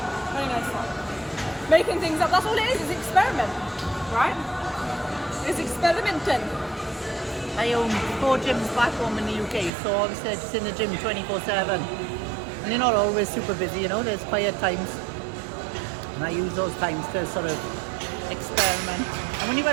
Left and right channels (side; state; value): left; drops out; at 9.7 s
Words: Very nice. Making things up, that's all it is, it's experiment. Right? It's experimenting. I own 4 gyms back home in the UK, so obviously I'm just in the gym 24/7. And they're not always super busy, you know, there's quiet times. And I use those times to sort of experiment. And when you've